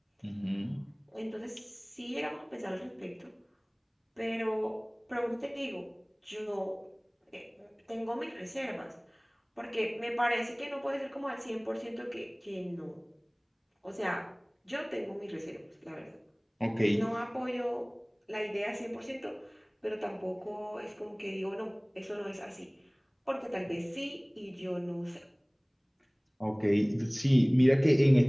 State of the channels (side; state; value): both; identical; correlation 1.00